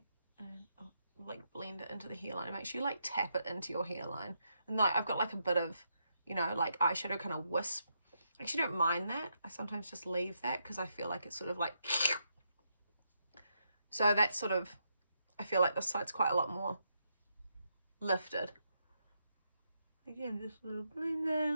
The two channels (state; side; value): inverted; both; correlation -0.81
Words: and up like blend it into the hairline. Make sure you like tap it into your hairline. And like I've got like a bit of, you know, like eyeshadow kind of wisp. I actually don't mind that. I sometimes just leave that because I feel like it's sort of like, so that's sort of, I feel like this side's quite a lot more lifted. Again, just a little